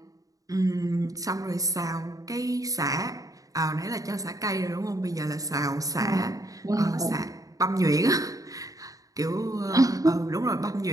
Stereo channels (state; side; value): late; left; 0.17 ms